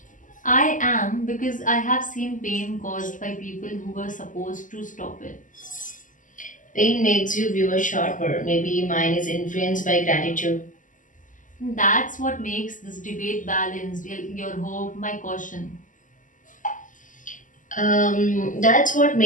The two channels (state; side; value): late; right; 0.38 ms